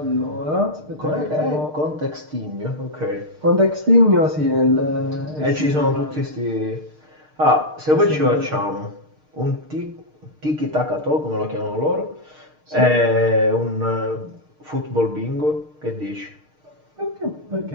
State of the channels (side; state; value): left; late; 6.6 ms